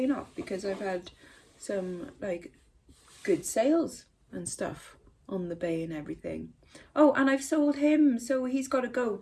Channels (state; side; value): identical; both; correlation 1.00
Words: off because I've had some like good sales and stuff on the bay and everything. Oh, and I've sold him, so he's got to go.